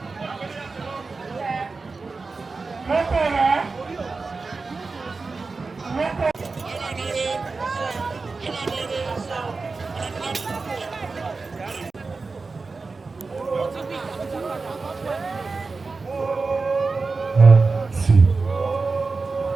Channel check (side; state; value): left; quieter; 4.1 dB